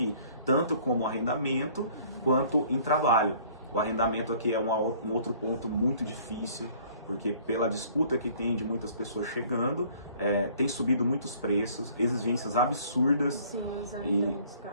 tanto como arrendamento quanto em trabalho. O arrendamento aqui é um outro ponto muito difícil, porque pela disputa que tem de muitas pessoas chegando, tem subido muitos preços, exigências absurdas. Sim,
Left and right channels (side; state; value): both; inverted; correlation -0.55